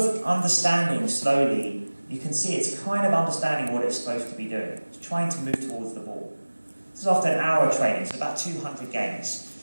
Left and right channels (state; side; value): inverted; both; correlation -1.00